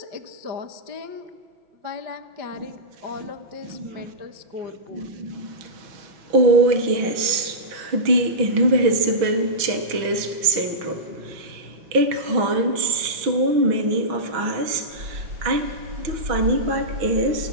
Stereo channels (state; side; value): late; left; 6.1 ms